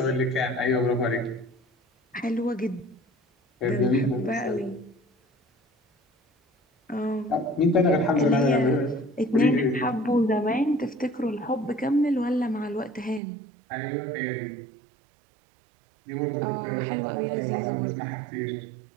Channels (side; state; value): left; drops out; at 13.2 s